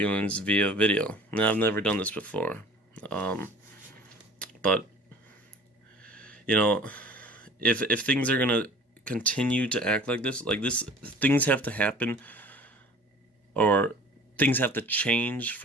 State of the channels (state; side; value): normal; both; correlation 0.46